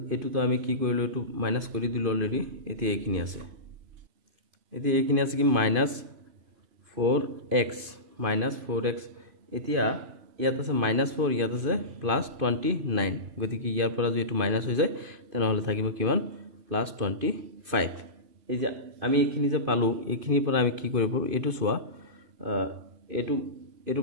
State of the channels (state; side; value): late; left; 2.5 ms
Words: এটো তো আমি কি কৰিলো এটো মাইনাস কৰি দিলো অলৰেডি এতিয়া এইখিনি আছে এতিয়া এইখিনি আছে কি -4x এতিয়া ইয়াত আছে -4 ইয়াত আছে +29 গতিকে ইয়াৰ পৰা যদি এটো মাইনাস হৈ যায় তেনেহলে থাকিব কিমান +25 এই যে আমি এইখিনি যে পালো এইখিনিৰ পৰা আমি কি কৰিব পাৰো এটো সোৱা এটো